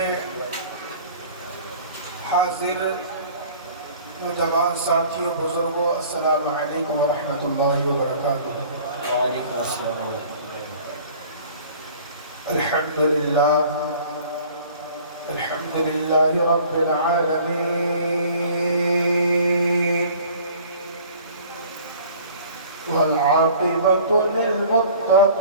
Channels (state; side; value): inverted; both; correlation -0.48